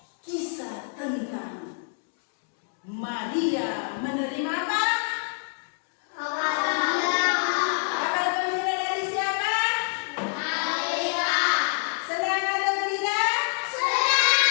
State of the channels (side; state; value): right; silent; digital silence